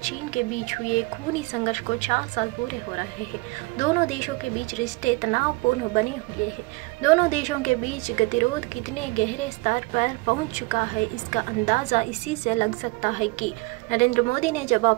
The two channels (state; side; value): quieter; left; 25.0 dB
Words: चीन के बीच हुए खूनी संघर्ष को 4 साल पूरे हो रहे हैं। दोनों देशों के बीच रिश्ते तनावपूर्ण बने हुए हैं। दोनों देशों के बीच गतिरोध कितने गहरे स्तर पर पहुंच चुका है, इसका अंदाजा इसी से लग सकता है कि नरेंद्र मोदी ने जब